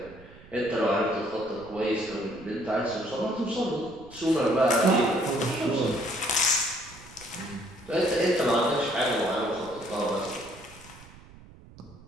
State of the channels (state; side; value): noise; right; rumble, 21 dB below the sound